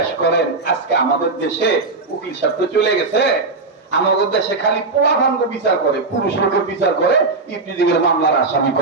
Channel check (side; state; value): left; quieter; 3.7 dB